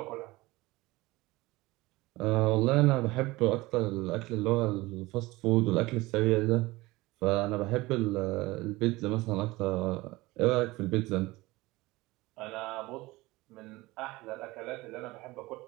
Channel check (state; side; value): quieter; left; 20.5 dB